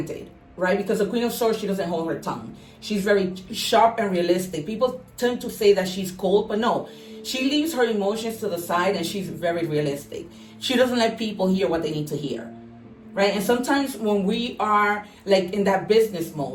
right? Because the Queen of Swords, she doesn't hold her tongue. She's very sharp and realistic. People tend to say that she's cold, but no, she leaves her emotions to the side, and she's very realistic. She doesn't let people hear what they need to hear, right? And sometimes when we are like in that business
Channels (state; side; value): identical; both; correlation 1.00